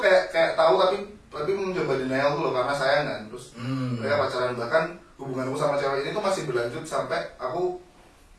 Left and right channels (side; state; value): both; identical; correlation 1.00